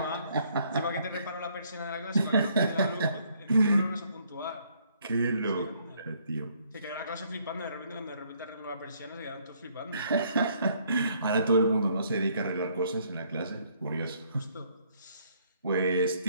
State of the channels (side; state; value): both; inverted; correlation -0.67